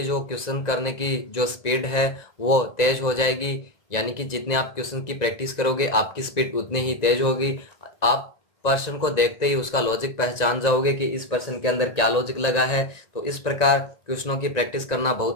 जो क्वेश्चन करने की जो स्पीड है वो तेज हो जाएगी। यानी कि जितने आप क्वेश्चन की प्रैक्टिस करोगे आपकी स्पीड उतनी ही तेज होगी। आप पर्सन को देखते ही उसका लॉजिक पहचान जाओगे कि इस पर्सन के अंदर क्या लॉजिक लगा है। तो इस प्रकार क्वेश्चनों की प्रैक्टिस करना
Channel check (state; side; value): late; right; 1.9 ms